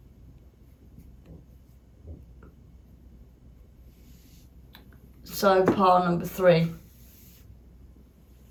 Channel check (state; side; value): identical; both; correlation 1.00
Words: So, pile number 3.